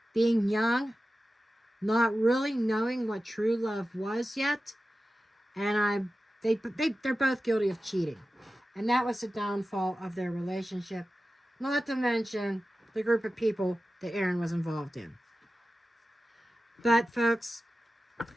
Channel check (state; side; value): normal; both; correlation 0.94